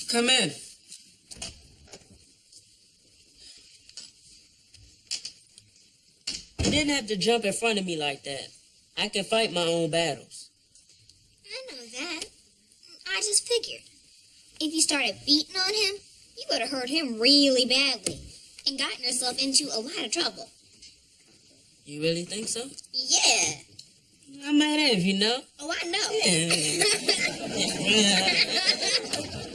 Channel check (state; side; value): identical; both; correlation 1.00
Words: Come in. You didn't have to jump in front of me like that. I can fight my own battles. I know that. I just figured. If you started beating on him, you would have hurt him really badly and gotten yourself into a lot of trouble. You really think so? Yeah. I'm mad at you know. Oh, I know.